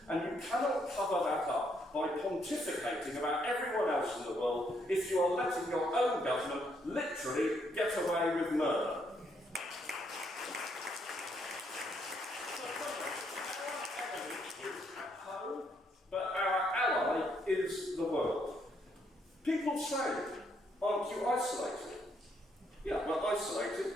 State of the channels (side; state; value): both; normal; correlation 0.73